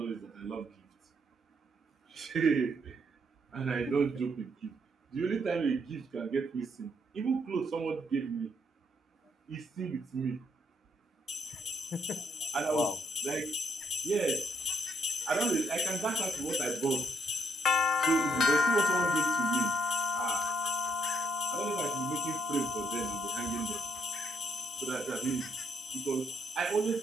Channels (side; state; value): both; normal; correlation 0.74